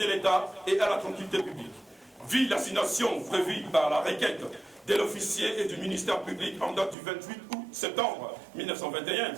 l'État et à la tranquillité publique, vit l'assignation prévue par la requête de l'officier et du ministère public en date du 28 août septembre 1921.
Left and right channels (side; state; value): left; drops out; at 7.0 s